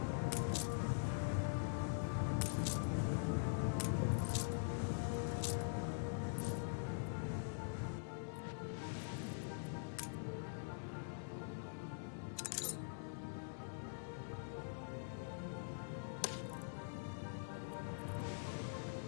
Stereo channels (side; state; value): right; silent; digital silence